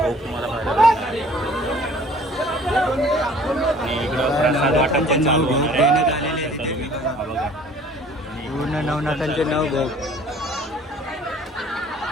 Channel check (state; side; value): normal; both; correlation 0.52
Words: तुम्हाला पाहायला भेटणार आहे. आणि इकडं प्रसाद वाटप पण चालू होणार आहे. हा बघा. पूर्ण नवनाथांचे 9 भोग.